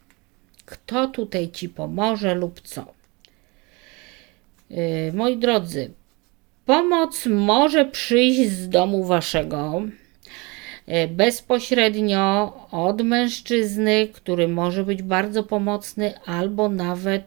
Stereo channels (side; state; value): left; quieter; 27.0 dB